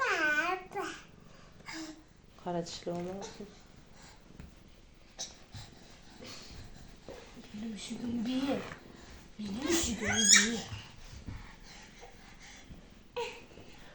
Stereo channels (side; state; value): both; identical; correlation 1.00